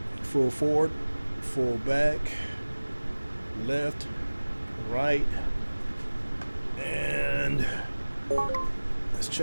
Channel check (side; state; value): both; inverted; correlation -1.00